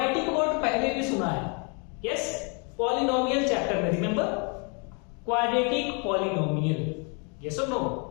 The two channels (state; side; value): quieter; right; 35.7 dB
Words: वर्ड पहले भी सुना है. Yes. Polynomial chapter में remember? Quadratic polynomial. Yes or no?